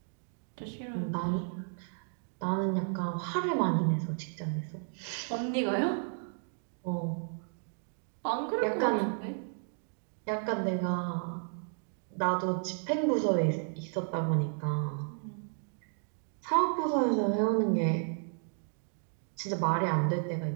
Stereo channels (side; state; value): left; silent; 56 dB below the other